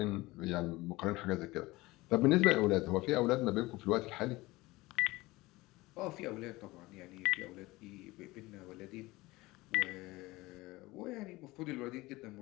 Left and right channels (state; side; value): quieter; right; 20.5 dB